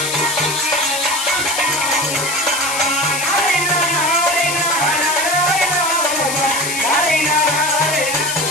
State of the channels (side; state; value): left; noise; hiss, 3 dB below the sound